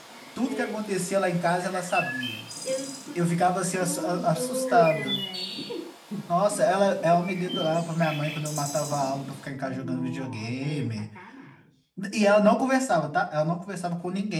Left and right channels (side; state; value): both; identical; correlation 1.00